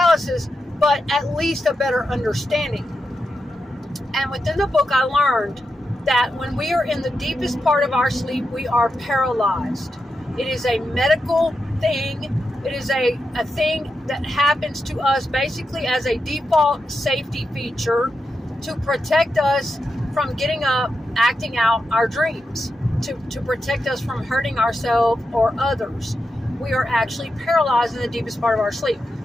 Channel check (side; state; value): both; normal; correlation 0.87